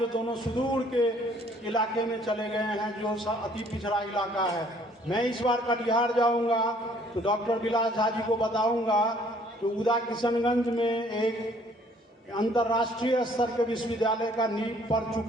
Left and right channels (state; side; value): normal; both; correlation 0.60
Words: दोनों सुदूर के इलाके में चले गए हैं, जो अति पिछड़ा इलाका है। मैं इस बार कटिहार जाऊंगा तो डॉक्टर विलास झा जी को बताऊंगा तो उदा किशनगंज में एक अंतर्राष्ट्रीय स्तर के विश्वविद्यालय का नींव पड़